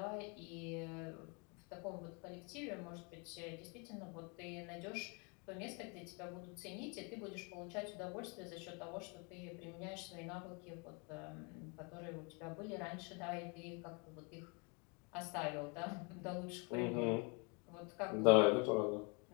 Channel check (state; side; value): quieter; right; 33.1 dB